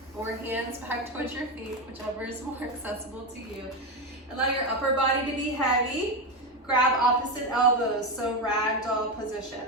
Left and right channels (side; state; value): both; normal; correlation 0.13